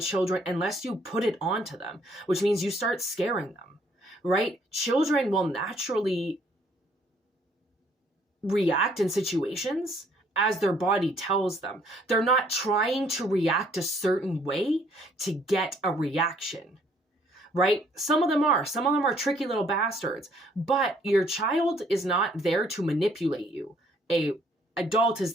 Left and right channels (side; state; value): both; normal; correlation 0.64